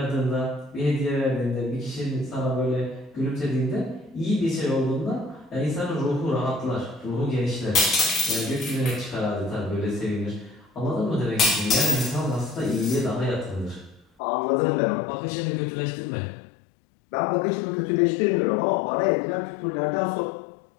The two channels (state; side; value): drops out; right; at 14.1 s